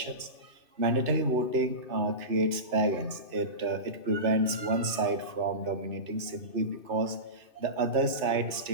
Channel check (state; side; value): late; left; 2.6 ms